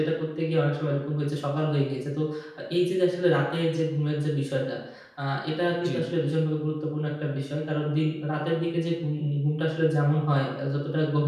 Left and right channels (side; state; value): both; identical; correlation 1.00